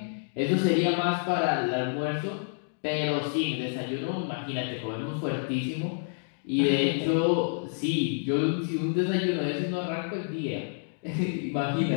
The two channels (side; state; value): right; silent; digital silence